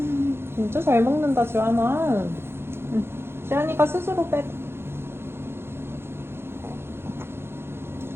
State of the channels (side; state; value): left; late; 0.11 ms